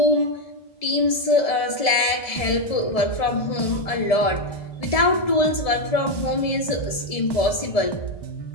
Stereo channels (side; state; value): right; late; 1.7 ms